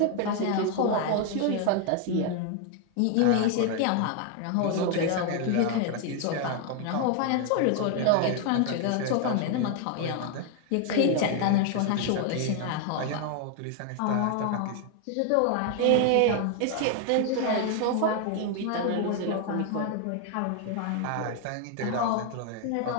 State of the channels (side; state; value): both; different; correlation 0.00